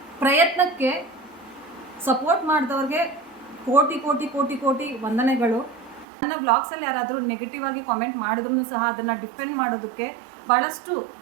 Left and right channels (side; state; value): left; drops out; at 6.1 s